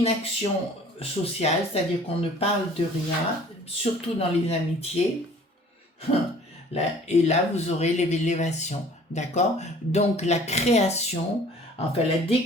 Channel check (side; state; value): both; normal; correlation 0.51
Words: sociale, c'est-à-dire qu'on ne parle de rien, surtout dans les amitiés. Et là, vous aurez l'élévation. D'accord? Donc, la création, enfin la